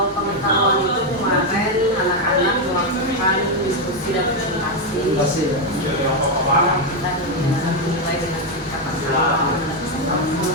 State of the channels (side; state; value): both; normal; correlation 0.04